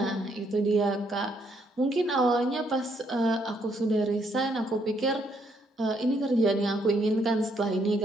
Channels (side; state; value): both; normal; correlation 0.72